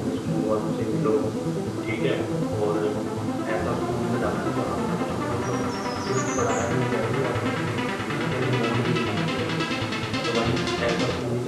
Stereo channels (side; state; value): both; identical; correlation 1.00